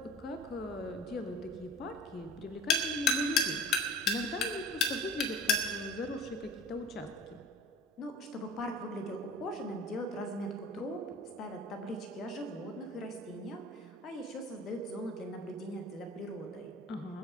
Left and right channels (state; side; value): normal; both; correlation 0.41